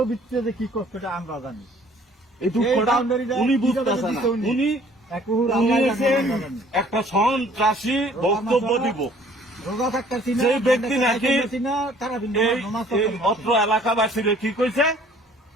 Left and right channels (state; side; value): normal; both; correlation 0.56